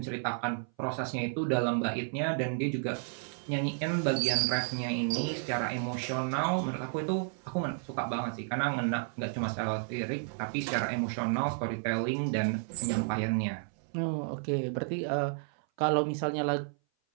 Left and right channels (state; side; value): silent; left; 56 dB below the other